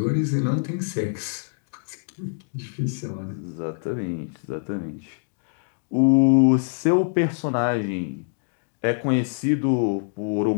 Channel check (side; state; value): right; silent; 62 dB below the other